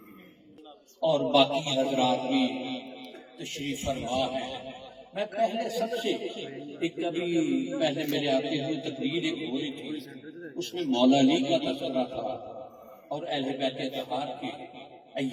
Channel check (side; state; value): both; identical; correlation 1.00